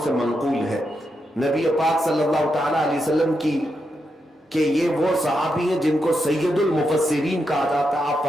سے منقول ہے، نبی پاک صلی اللہ تعالیٰ علیہ وسلم کی، کہ یہ وہ صحابی ہیں جن کو سید المفسرین کہا جاتا ہے۔ آپ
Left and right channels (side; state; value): both; normal; correlation 0.84